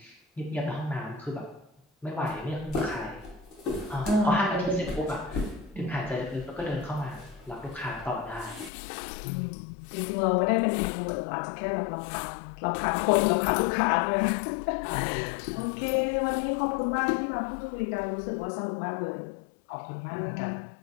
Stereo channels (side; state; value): right; drops out; at 8.7 s